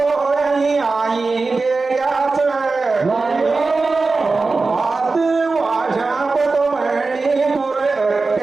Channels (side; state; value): left; quieter; 3.9 dB